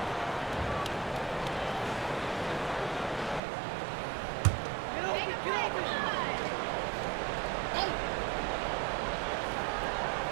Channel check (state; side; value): drops out; left; at 3.4 s